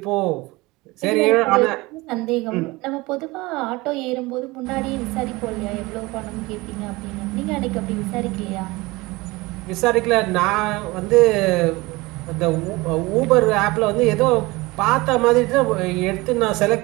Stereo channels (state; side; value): quieter; left; 22.2 dB